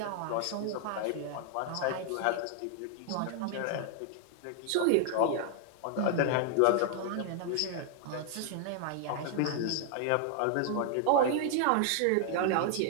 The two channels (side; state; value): both; different; correlation 0.00